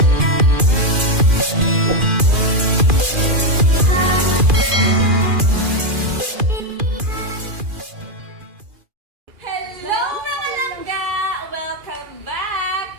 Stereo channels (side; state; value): left; late; 2.4 ms